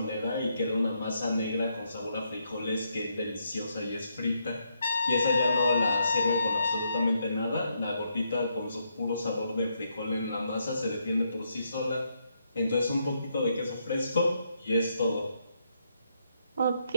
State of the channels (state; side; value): inverted; both; correlation -0.78